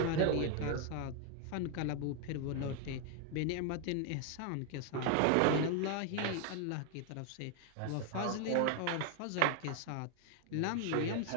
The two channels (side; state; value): both; different; correlation 0.00